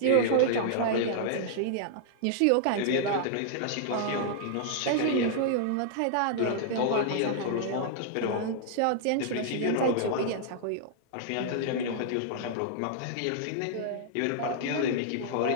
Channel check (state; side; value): different; both; correlation -0.01